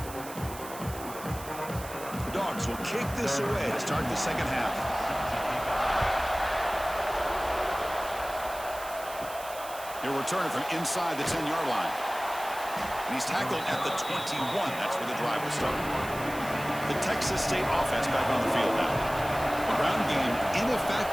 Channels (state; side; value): noise; right; hiss, 14 dB below the sound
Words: The Dogs will kick this away to start the second half. He'll return it from inside the 10-yard line. And he's tackled at the 21. That's where the drive will start. The Texas State offense back on the field now. The ground game